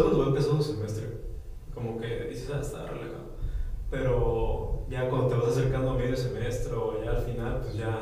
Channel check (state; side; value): identical; both; correlation 1.00